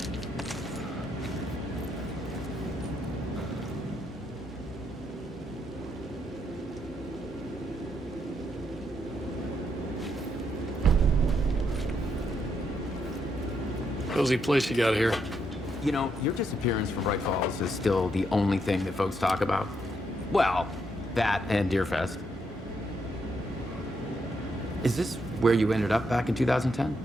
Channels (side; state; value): both; normal; correlation 0.77